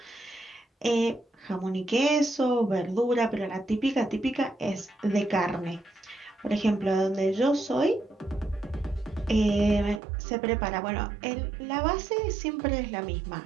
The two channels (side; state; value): left; drops out; at 10.0 s